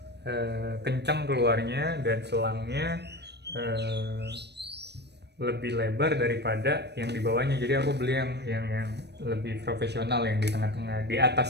kencang keluarnya, dan selangnya lebih lebar daripada yang di bawahnya. Jadi aku beli yang lebih profesional, yang di tengah-tengah. Di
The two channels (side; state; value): left; late; 0.49 ms